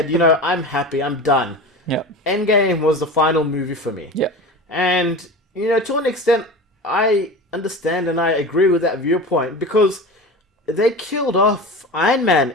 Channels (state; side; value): normal; both; correlation 0.31